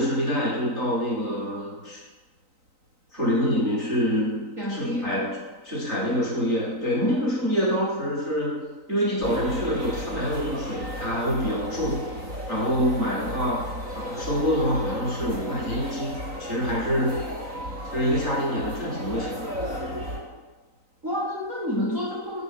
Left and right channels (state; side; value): late; left; 3.9 ms